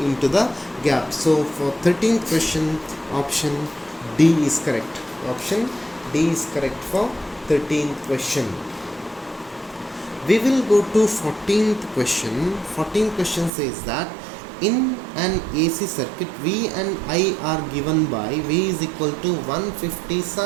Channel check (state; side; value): drops out; left; at 13.5 s